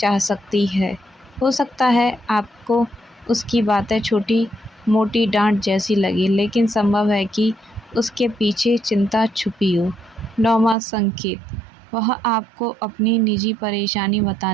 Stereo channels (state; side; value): drops out; left; at 10.8 s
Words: सकती है। हो सकता है आपको उसकी बातें छोटी मोटी डांट जैसी लगे, लेकिन संभव है कि उसके पीछे चिंता छुपी हो। नौवां संकेत, वह आपको अपनी निजी परेशानी